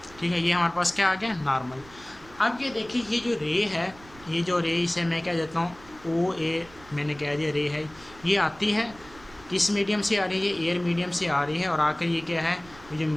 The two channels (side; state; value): right; noise; rumble, 23 dB below the sound